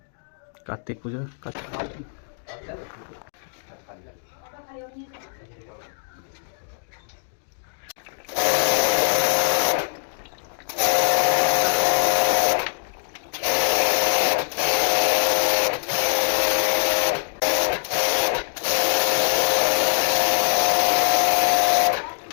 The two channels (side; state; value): right; silent; digital silence